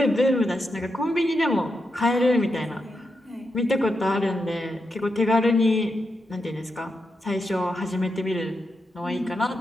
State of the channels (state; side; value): normal; both; correlation 0.85